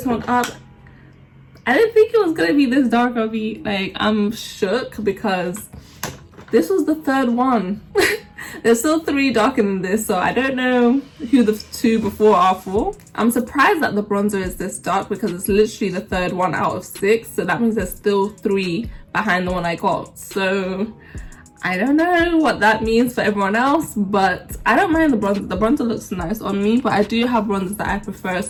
one up. I didn't think it was gonna be this dark on me. Like, I'm shook because this was the third one. There's still 3 darker than this, so I don't know who the 2 before are for. I'm surprised that the bronzer is this dark because it's literally the 3rd one out of 6, so that means there's still 3 behind the one I got. So I don't know what that means for everyone else, but I don't mind the bronzer. The bronzer looks nice on me, but I do have bronzers that I prefer,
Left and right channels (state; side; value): identical; both; correlation 1.00